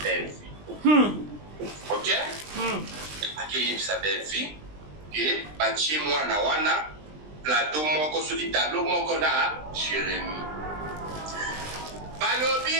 belvi ok akeyebisa belvi ke batie mwana wana plateau moko soki tableau moko na Jérémie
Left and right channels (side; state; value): left; late; 20 ms